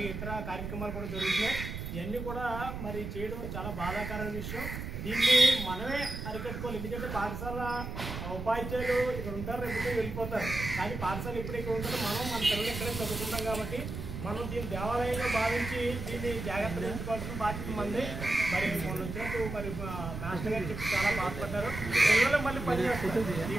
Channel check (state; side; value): noise; right; rumble, 6 dB below the sound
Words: ఇతర కార్యక్రమాలు కూడా జరుగుతున్నాయి. ఇవన్నీ కూడా మరి చేయడం చాలా బాధాకరమైన విషయం. దీన్ని మనమే అరికట్టుకోవాలి. ఎందుకంటే పాఠశాల ఉపాధ్యాయులు ఇక్కడ ఉంటారు, రేపు వెళ్ళిపోతారు. కానీ పాఠశాల ఎప్పుడు ఇక్కడ ఉంటుందో మనం మన పిల్లలు ఇక్కడే చదువుకుంటాం కాబట్టి మనం దీన్ని దేవాలయంగా భావించి దీన్ని జాగ్రత్తగా ఉంచుకోవాల్సిన బాధ్యత మంది. మరి మొన్న వచ్చినట్టు మరి మాస్టర్ గారు చెప్పి చాలా బాధపడ్డారు. పిల్లలు మళ్ళీ పనిచేస్తారు.